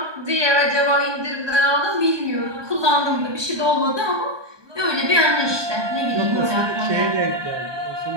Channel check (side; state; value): left; late; 1.2 ms